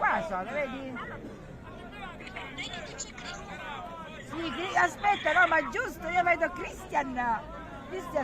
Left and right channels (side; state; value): both; identical; correlation 1.00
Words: sono, vedi? Sì, aspetta, no, ma giusto, io vedo Christian,